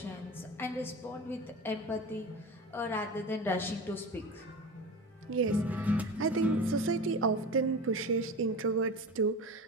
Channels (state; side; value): normal; both; correlation 0.30